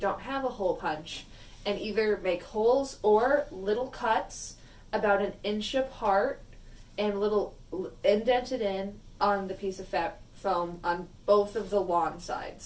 have a hole punch, and either make holes or little cuts about 1 inch apart and little indented in on the piece of foam on both of the lawn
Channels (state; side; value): identical; both; correlation 1.00